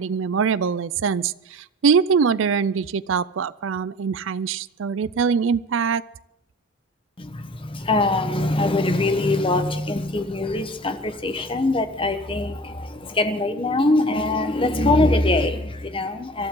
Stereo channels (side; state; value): both; normal; correlation 0.39